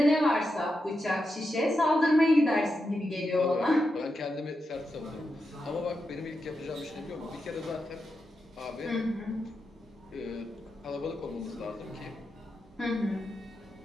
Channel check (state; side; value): normal; both; correlation 0.87